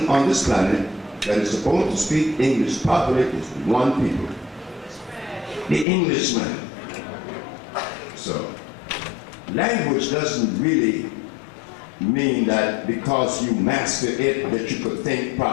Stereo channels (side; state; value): right; drops out; at 5.9 s